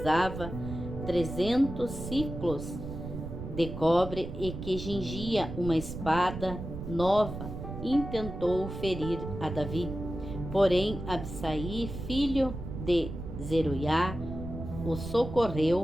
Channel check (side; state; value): right; noise; rumble, 8 dB below the sound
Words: 300 ciclos de cobre e que cingia uma espada nova, intentou ferir a Davi. Porém, Absai, filho de Zeruiá, o